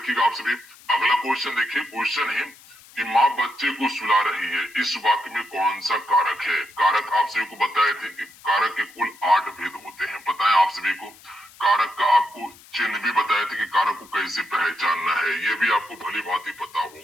आप सभी। अगला क्वेश्चन देखिए, क्वेश्चन है कि माँ बच्चे को सुला रही है, इस वाक्य में कौन सा कारक है? कारक आप सभी को बताए थे कि कारक के कुल 8 भेद होते हैं, बताएं आप सभी को। कारक का आपको चिन्ह भी बताए थे कि कारक को कैसे पहचानना है, ये भी आपको भली भांति पता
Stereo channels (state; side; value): noise; left; hiss, 23 dB below the sound